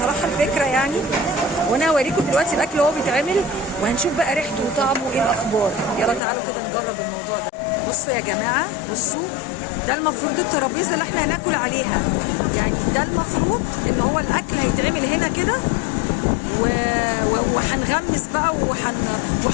الفكره يعني، وانا هوريكم دلوقتي الاكل وهو بيتعمل وهنشوف بقى ريحته وطعمه ايه الاخبار. يلا تعالوا كده نجرب الموضوع ده. بصوا يا جماعه، بصوا ده المفروض الترابيزه اللي احنا هناكل عليها، يعني ده المفروض ان هو الاكل هيتعمل هنا كده وهنغمس بقى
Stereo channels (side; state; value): right; drops out; at 6.2 s